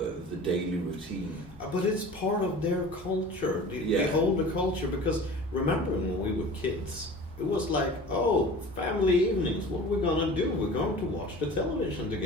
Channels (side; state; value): both; normal; correlation 0.40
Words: daily routine. But it's part of their culture, the older culture, because remember when we were kids, it was like, oh, family evenings, what are we going to do? We're going to watch the television